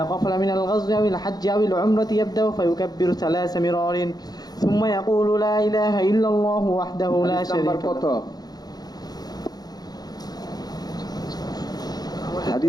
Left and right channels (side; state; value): right; late; 0.19 ms